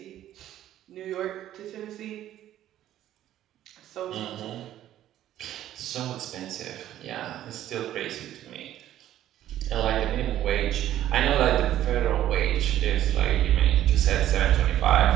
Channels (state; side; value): quieter; left; 12.5 dB